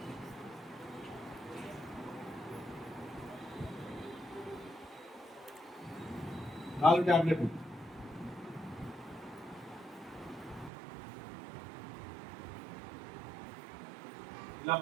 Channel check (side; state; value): left; drops out; at 10.7 s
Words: నాలుగు టాబ్లెట్లు ఇలా